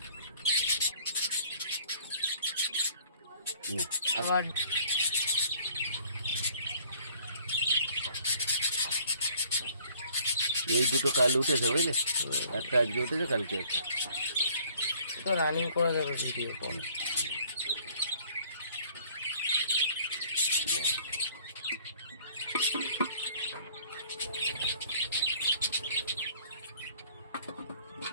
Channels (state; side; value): inverted; both; correlation -0.56